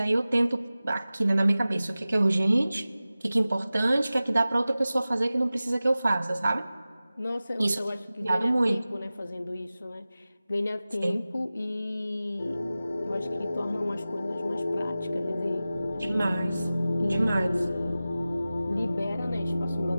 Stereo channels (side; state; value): both; inverted; correlation -0.96